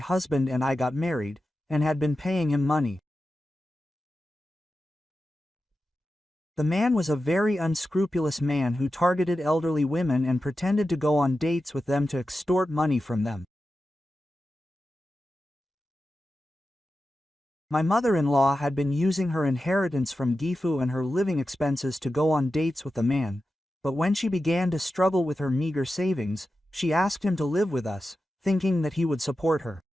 and I got married, and had been paying him money. The man was a very unscrupulous man who targeted elderly women and pretended to go on dates with them to extort money from them. My mother-in-law had been using her inheritance from Gifu and her living expenses to go on dates with the man, but when she began to struggle with her meager savings, she asked him to live with us, thinking that he would support her.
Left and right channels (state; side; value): normal; both; correlation 0.92